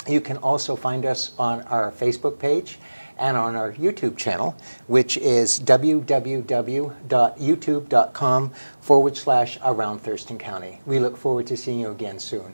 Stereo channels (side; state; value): both; inverted; correlation -1.00